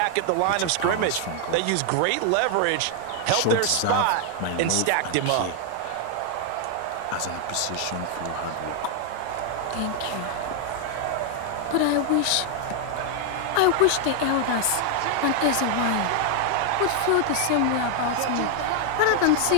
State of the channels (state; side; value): different; both; correlation 0.00